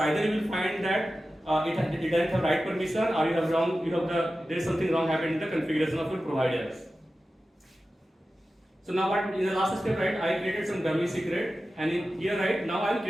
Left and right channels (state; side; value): normal; both; correlation 0.94